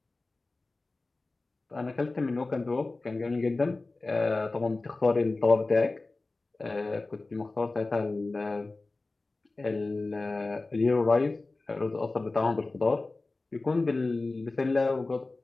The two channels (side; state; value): right; quieter; 3.3 dB